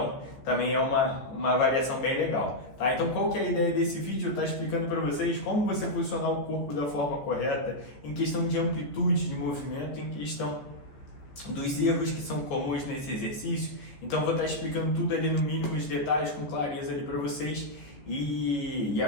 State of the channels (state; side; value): late; right; 14 ms